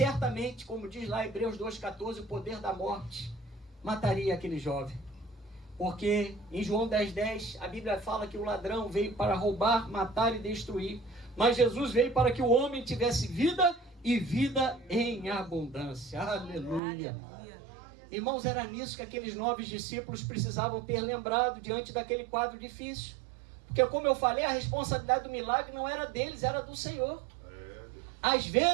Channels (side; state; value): left; drops out; at 16.8 s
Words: como diz lá em Hebreus 2,14, o poder da morte mataria aquele jovem. Porque em João 10,10, a Bíblia fala que o ladrão veio para roubar, matar e destruir. Mas Jesus veio para que o homem tivesse vida e vida em abundância. Aleluia. Irmãos, era nisso que aqueles 9 discípulos precisavam ter lembrado diante daquele quadro difícil. Porque, como eu falei, a responsabilidade do milagre não era deles, era do Senhor. Às